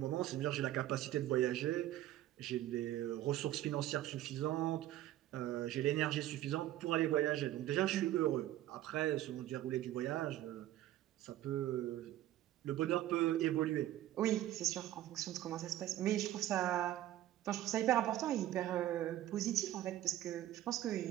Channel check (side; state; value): left; quieter; 13.7 dB